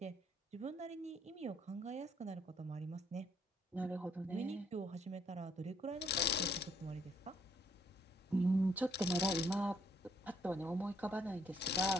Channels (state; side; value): normal; both; correlation 0.68